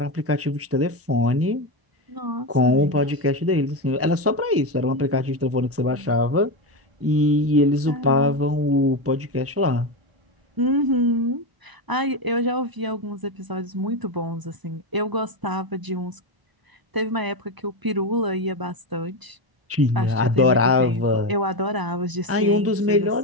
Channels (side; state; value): left; late; 1.0 ms